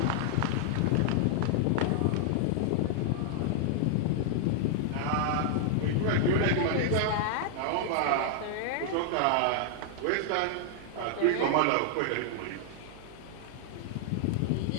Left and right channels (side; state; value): both; different; correlation 0.00